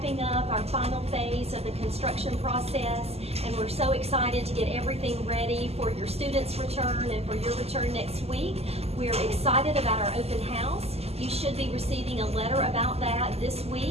up our final phase of the construction process, and we're so excited to get everything ready for your students' return and for your return next week. We're excited about our open house. You should be receiving a letter about that this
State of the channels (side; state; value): left; late; 0.29 ms